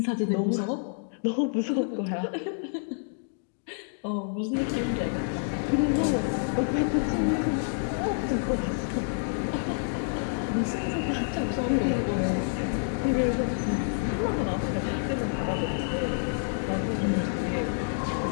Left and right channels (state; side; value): silent; right; digital silence